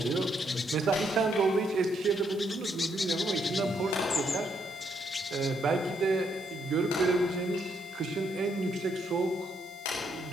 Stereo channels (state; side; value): noise; right; hiss, 25 dB below the sound